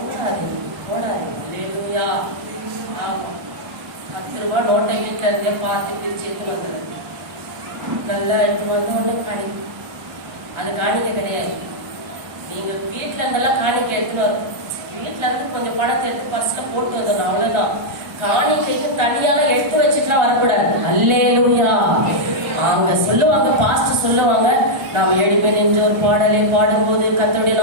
போடாது. அல்லேலூயா. 10 ரூபாய் நோட்டை வீட்டுல இருந்தே பார்த்து பிரிச்சு எடுத்து வந்துடுது. நல்லா எடுத்து வந்து ஒண்ணு காணிக்க. அது காணிக்க கிடையாது. நீங்க வீட்டுல இருந்தெல்லாம் காணிக்க எடுத்துன்னு வரும். வீட்டுல இருந்து கொஞ்சம் பணத்தை எடுத்து பர்ஸ்ல போட்டு வந்துடணும், அவ்வளவுதான். காணிக்கைக்கு தனியாக எடுத்து வச்சுட்டுலாம் வரக்கூடாது. அல்லேலூயா. அவங்க சொல்லுவாங்க, பாஸ்டர் சொல்லுவாங்க, நாம 7 பேர் நின்று ஒரு பாடலை பாடும்போது கர்த்தருடைய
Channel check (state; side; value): late; left; 1.3 ms